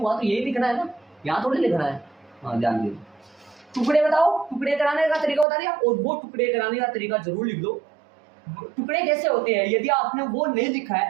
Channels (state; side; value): drops out; left; at 5.5 s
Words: तो यही लिखना है ना, यहाँ थोड़ी लिखना है। हाँ ध्यान दीजिए। टुकड़े बताओ, टुकड़े कराने का तरीका बता दिया, और वो टुकड़े कराने का तरीका जरूर लिख लो। टुकड़े कैसे होते हैं, यदि आपने वो नहीं लिखा